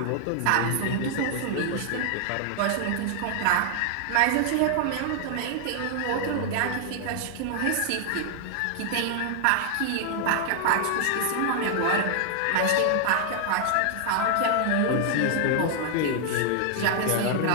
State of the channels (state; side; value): different; both; correlation 0.00